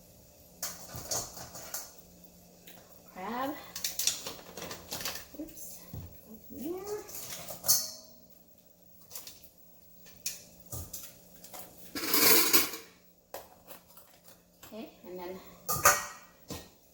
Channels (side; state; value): both; identical; correlation 1.00